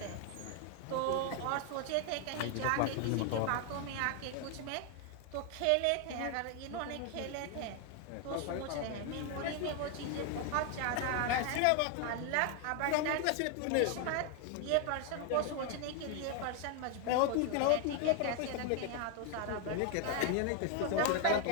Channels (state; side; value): different; both; correlation 0.01